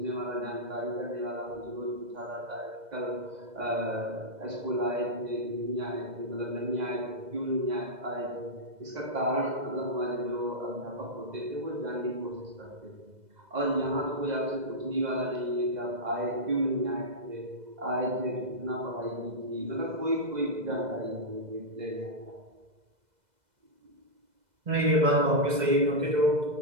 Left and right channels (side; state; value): left; late; 2.0 ms